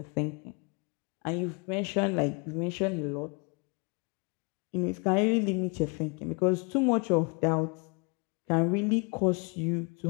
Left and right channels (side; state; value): right; quieter; 33.2 dB